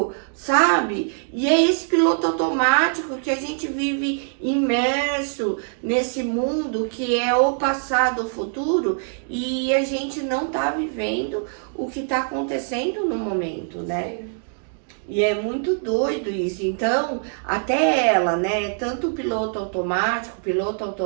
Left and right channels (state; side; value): silent; left; 63 dB below the other